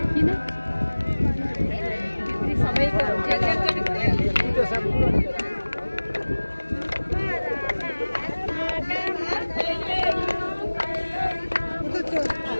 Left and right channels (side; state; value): both; inverted; correlation -1.00